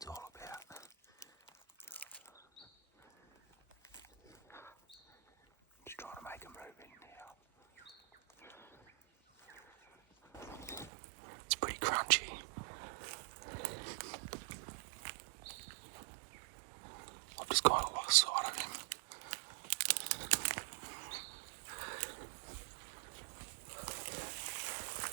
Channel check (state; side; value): drops out; left; at 10.9 s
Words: all about. Just trying to make him move in now. It's pretty crunchy. I've just kind of lost sight of him.